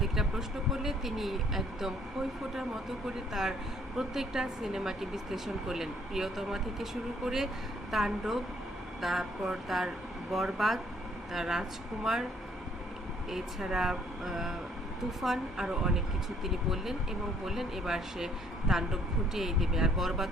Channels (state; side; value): normal; both; correlation 0.64